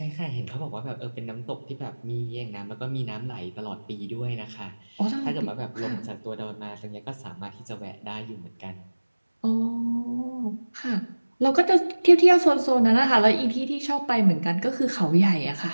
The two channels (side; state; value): both; inverted; correlation -1.00